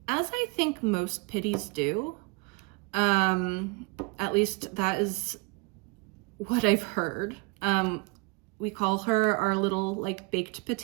I think most pitties do. At least that is what I've heard. We call her our little like baked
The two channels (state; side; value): quieter; left; 28.5 dB